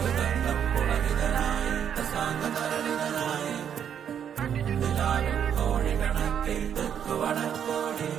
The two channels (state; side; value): quieter; left; 8.6 dB